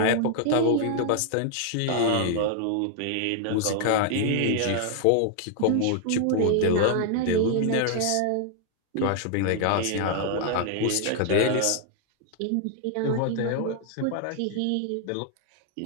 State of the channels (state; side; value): different; both; correlation 0.00